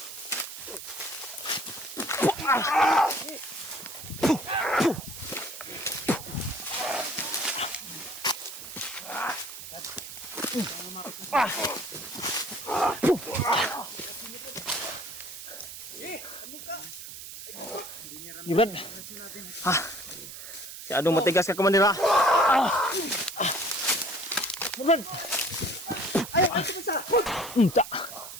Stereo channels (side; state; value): right; noise; hiss, 11 dB below the sound